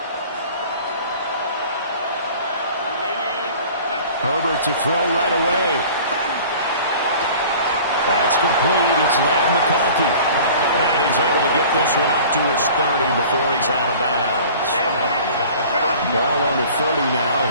Herbert to throw right away. That's complete. It's Ladd McConkey. And he's able to get this one up to his 30 before he's out of bounds. Ball on the 30 now.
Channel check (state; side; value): inverted; both; correlation -0.45